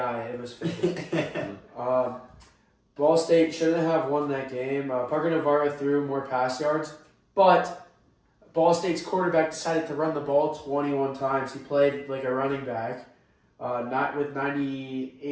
It was fake. Ball State shouldn't have won that game. Parker Navarro threw more pass yards, but Ball State's quarterback decided to run the ball 21 times. He played like a running back. Not with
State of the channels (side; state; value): both; identical; correlation 1.00